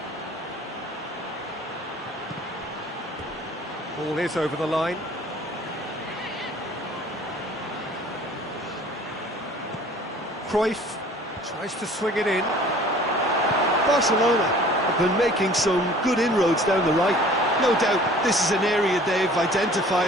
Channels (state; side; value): normal; both; correlation 0.50